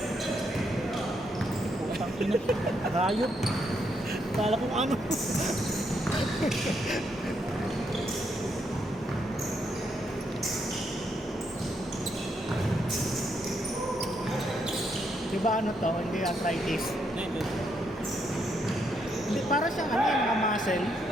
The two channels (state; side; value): normal; both; correlation 0.77